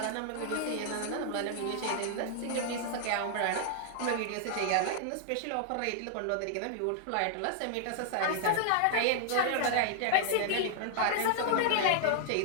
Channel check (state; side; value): different; both; correlation -0.01